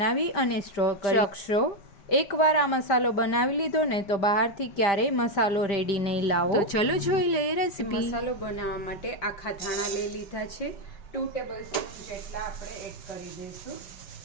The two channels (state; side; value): late; right; 5.0 ms